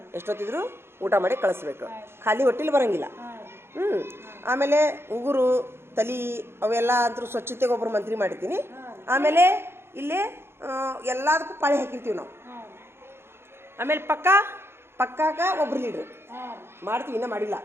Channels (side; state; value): left; late; 0.12 ms